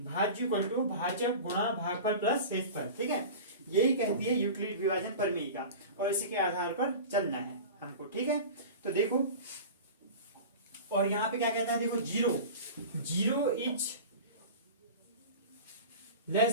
भाज्य इक्वल टू भाजक गुणा भागफल प्लस शेषफल, ठीक है। यही कहती है यूक्लिड विभाजन प्रमेय का, और इसी के आधार पर चलना है हमको, ठीक है। तो देखो, और यहाँ पे क्या कहता है, देखो zero is less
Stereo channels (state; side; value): inverted; both; correlation -0.34